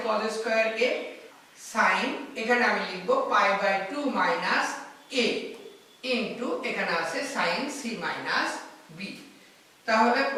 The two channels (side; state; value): both; identical; correlation 1.00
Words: cos স্কয়ার a sin, এখানে আমি লিখব π/2 মাইনাস a ইনটু এখানে আছে sin c মাইনাস b। তাহলে